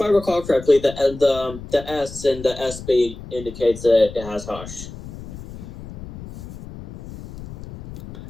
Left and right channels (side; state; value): left; noise; rumble, 13 dB below the sound